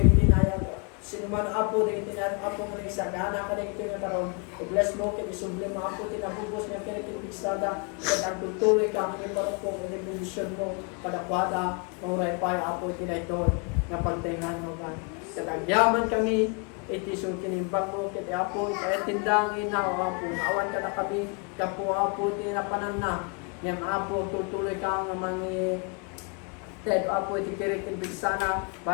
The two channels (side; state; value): right; quieter; 34.8 dB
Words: itinayag sino man apo na itinayag apo nga nagsagana ka ito nga taron i-bless mo ket isubli mo apo tinabubos nga kirek tin pigsada ket agtutuloy ka ang iparupok iti bendisyon mo kadakwada mauray pay apo itinayton nga pagtingan mo God ket agyaman kami iti sung kinimbang mo ket apo iti tindang ina o apo awan ka na kami kapo apo ti napanan na yan apo tutuloy ka nga mangi ted apo iti kirek tin bigsana